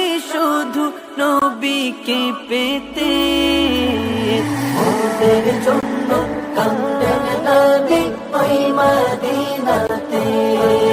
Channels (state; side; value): identical; both; correlation 1.00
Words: শুধু নবীকে পেতে। ওদের জন্য কাঁদেন নবী ওই মদিনাতে,